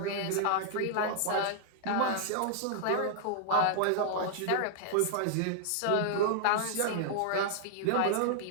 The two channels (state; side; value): different; both; correlation -0.01